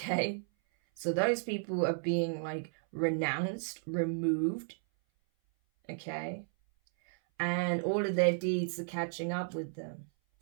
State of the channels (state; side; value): silent; left; 56 dB below the other